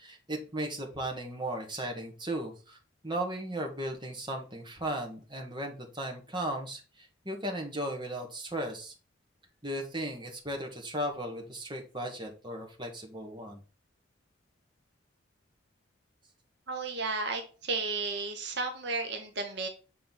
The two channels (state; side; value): normal; both; correlation 0.18